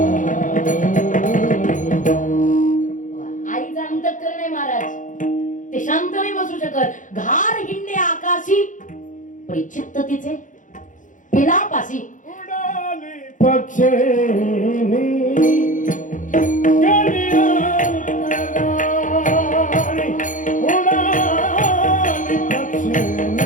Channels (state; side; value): late; right; 0.37 ms